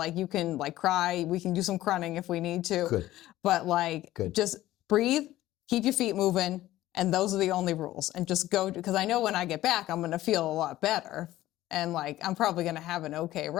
you can like cry. We can do some crunning if we need to. Good. But like just breathe, keep your feet moving. And those are the only rules. And just go, because I know when I get back, I'm going to feel a lot better. And like, I'm probably going to have an okay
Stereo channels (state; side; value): quieter; right; 15.2 dB